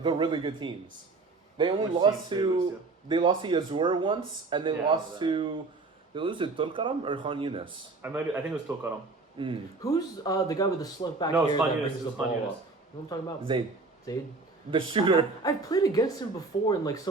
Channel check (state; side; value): quieter; left; 3.7 dB